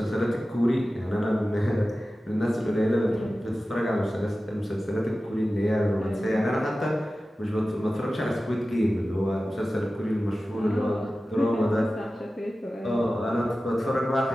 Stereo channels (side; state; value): both; normal; correlation 0.95